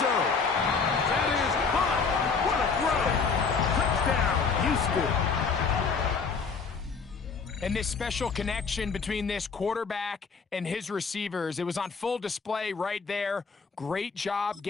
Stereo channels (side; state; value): right; quieter; 5.1 dB